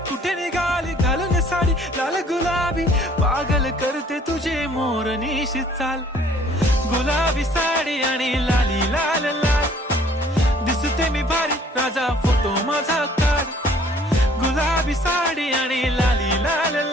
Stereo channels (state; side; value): normal; both; correlation 0.57